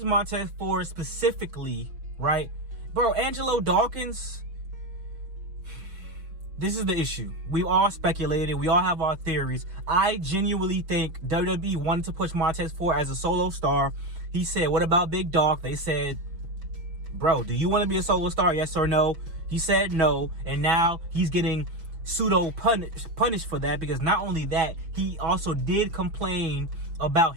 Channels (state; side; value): late; left; 6.1 ms